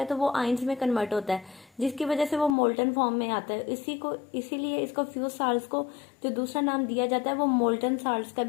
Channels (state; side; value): drops out; right; at 2.6 s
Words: तो वो आइंस में कन्वर्ट होता है, जिसकी वजह से वो मोल्टन फॉर्म में आता है। इसीलिए इसको फ्यूज साल्ट्स को जो दूसरा नाम दिया जाता है वो मोल्टन साल्ट्स का